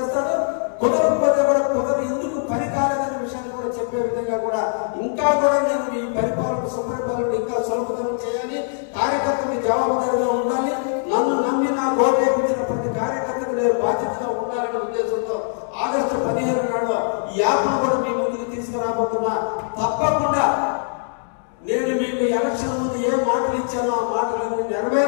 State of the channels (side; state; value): right; silent; digital silence